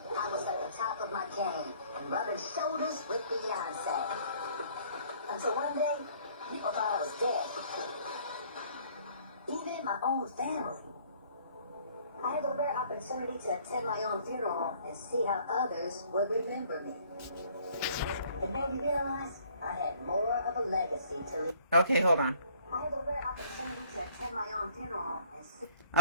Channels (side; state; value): both; inverted; correlation -0.58